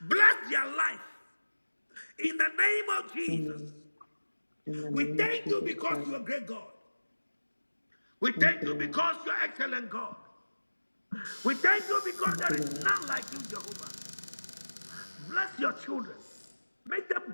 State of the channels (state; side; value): inverted; both; correlation -1.00